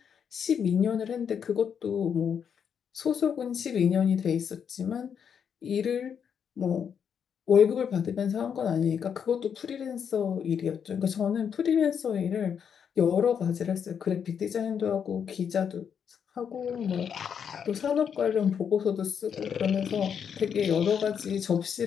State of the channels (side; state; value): right; quieter; 7.5 dB